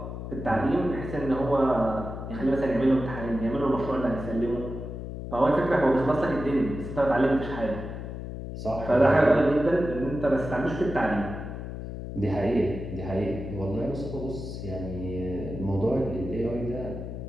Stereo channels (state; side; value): noise; left; hum, 8 dB below the sound